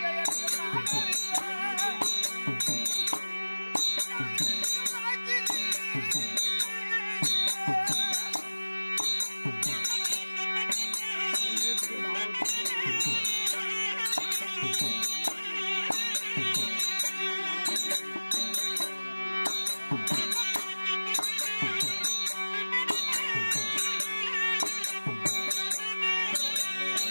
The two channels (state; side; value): inverted; both; correlation -1.00